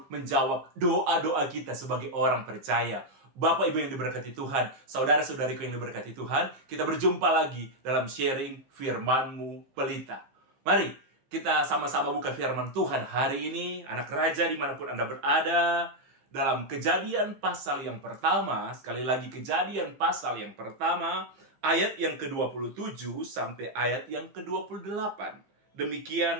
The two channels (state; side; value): late; left; 15 ms